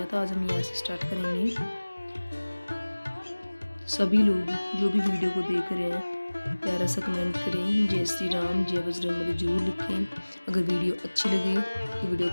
था, आज हम यहाँ से स्टार्ट करेंगे। सभी लोग जो भी वीडियो को देख रहे हैं प्यारा सा कमेंट करें, जय श्री राम जय बजरंगबली जरूर लिखें। अगर वीडियो अच्छी लगे तो वीडियो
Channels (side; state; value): both; inverted; correlation -1.00